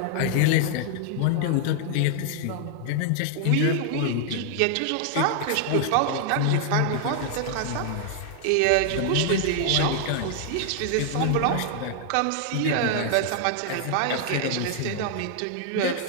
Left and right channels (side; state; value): both; different; correlation 0.00